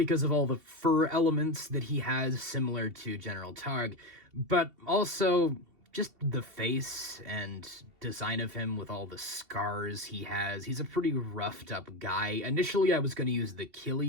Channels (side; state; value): left; late; 2.7 ms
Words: of all the fur elements that he has similar to General Targ, but also just the face and design of him with all the scars he has. He's a pretty roughed up guy. Initially, I was going to use the